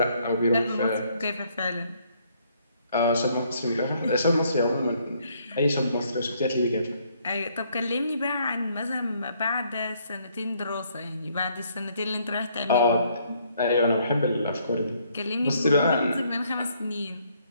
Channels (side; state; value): both; inverted; correlation -0.68